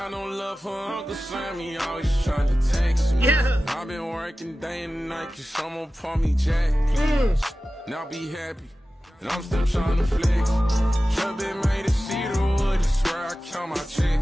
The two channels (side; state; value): both; normal; correlation 0.95